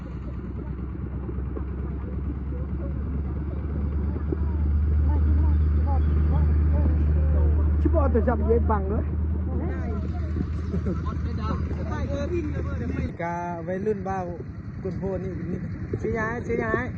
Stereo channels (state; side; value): identical; both; correlation 1.00